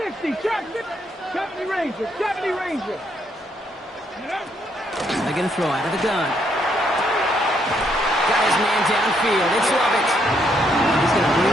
trap 60. 70 Rangers, 70 Rangers. They're going to throw out of the gun. Got his man downfield. It's Lovett. He's going to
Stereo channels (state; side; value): normal; both; correlation 0.73